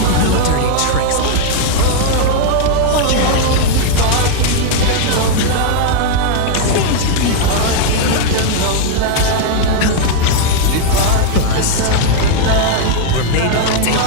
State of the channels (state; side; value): different; both; correlation 0.00